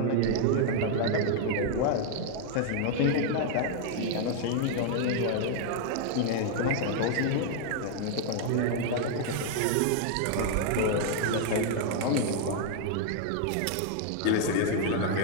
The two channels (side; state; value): both; different; correlation 0.00